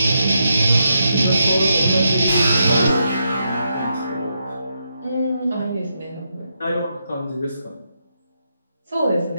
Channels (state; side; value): inverted; both; correlation -0.82